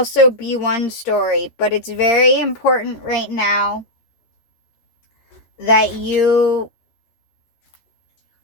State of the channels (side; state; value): right; late; 13 ms